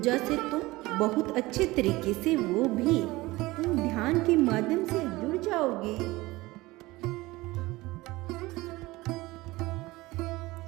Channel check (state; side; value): quieter; left; 20.1 dB